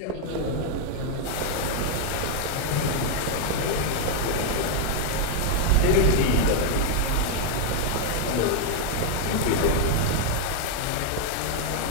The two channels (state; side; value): different; both; correlation 0.00